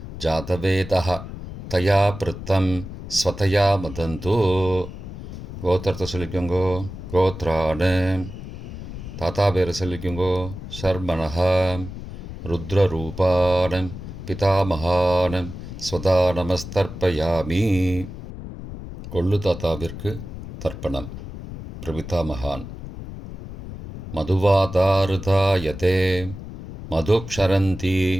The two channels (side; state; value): left; noise; rumble, 11 dB below the sound